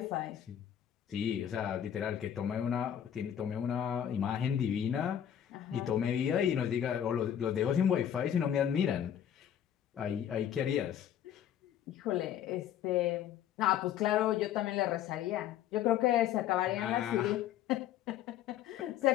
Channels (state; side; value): quieter; right; 10.1 dB